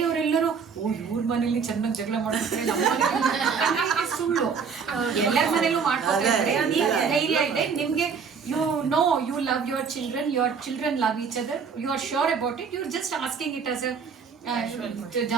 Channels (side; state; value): left; quieter; 6.0 dB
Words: ಇವ್ರ ಮನೇಲಿ ಚೆನ್ನಾಗಿ ಜಗಳ ಮಾಡ್ತಾರೆ, ನಮ್ಮ ಮನೇಲಿ ಸುಳ್ಳು, ಎಲ್ಲರ ಮನೇಲೂ ಮಾಡ್ಕೊತಾರೆ. ಧೈರ್ಯ ಇದೆ ನಿಮ್ಗೆ, you love your children love each other, you are sure about it, you are just asking it as a